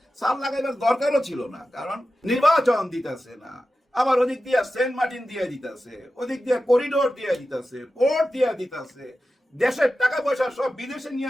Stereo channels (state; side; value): normal; both; correlation 0.93